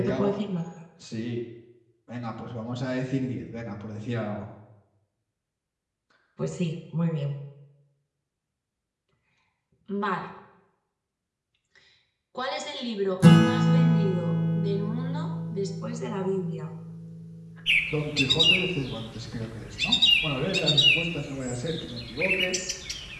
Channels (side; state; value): both; identical; correlation 1.00